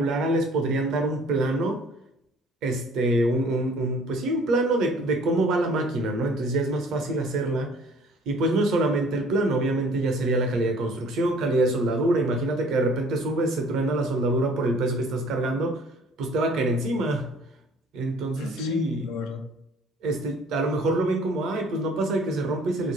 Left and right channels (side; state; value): both; normal; correlation 0.54